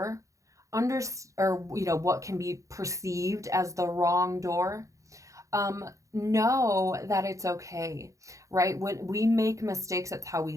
or what can be perceived as the wrong door, know that it's okay, right? When we make mistakes, that's how we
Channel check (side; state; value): left; late; 0.15 ms